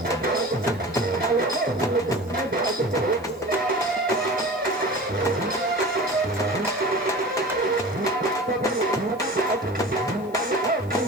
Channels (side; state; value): right; noise; hiss, 29 dB below the sound